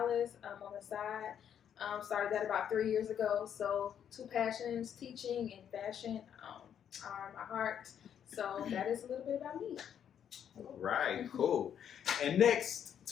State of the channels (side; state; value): right; quieter; 8.9 dB